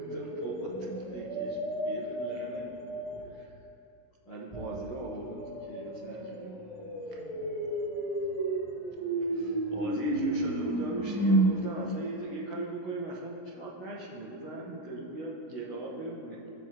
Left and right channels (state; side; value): late; right; 16 ms